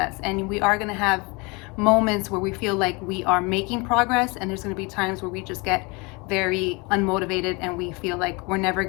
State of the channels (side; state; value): right; quieter; 27.9 dB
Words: and we are going to have moments where we feel like we are making progress, and there's going to be times where we just get very unmotivated and we feel like we're never